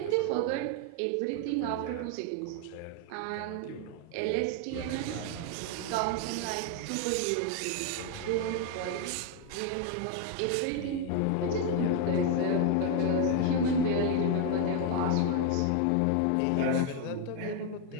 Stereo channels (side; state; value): both; different; correlation 0.00